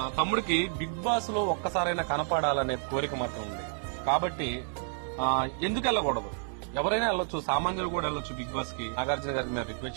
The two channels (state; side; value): silent; left; 58 dB below the other